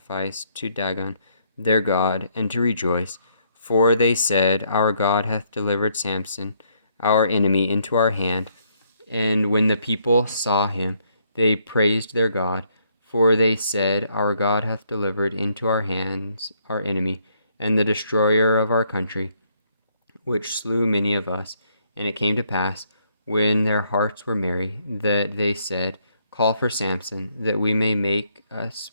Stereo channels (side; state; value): both; inverted; correlation -0.71